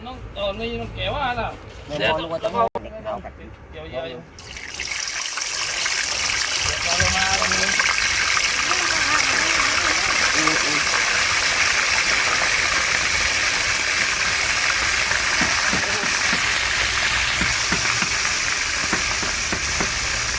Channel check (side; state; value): both; identical; correlation 1.00